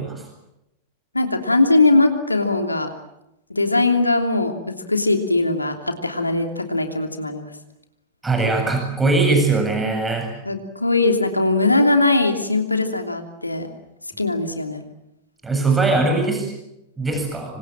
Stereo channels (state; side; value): inverted; both; correlation -0.43